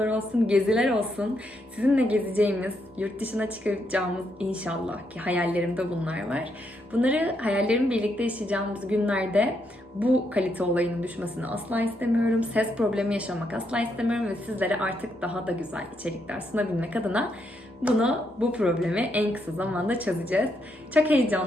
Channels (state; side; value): normal; both; correlation 0.78